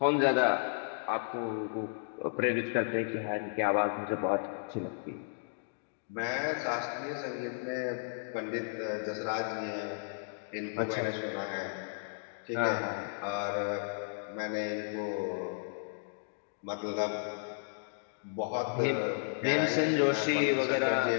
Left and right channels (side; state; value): right; silent; digital silence